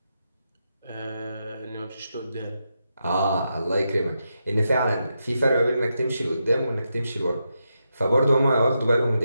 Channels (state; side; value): inverted; both; correlation -0.85